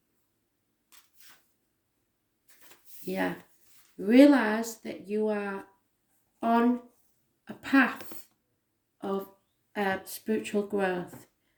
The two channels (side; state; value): both; identical; correlation 1.00